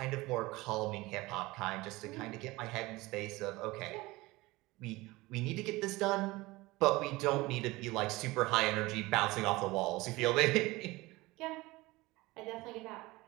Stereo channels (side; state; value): left; quieter; 20.9 dB